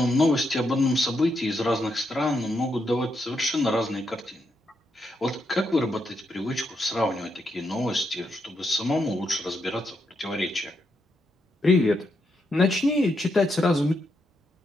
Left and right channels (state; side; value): normal; both; correlation 0.81